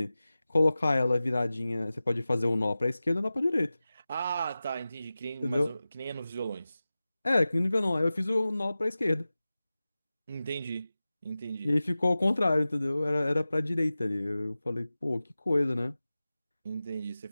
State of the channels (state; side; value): inverted; both; correlation -0.96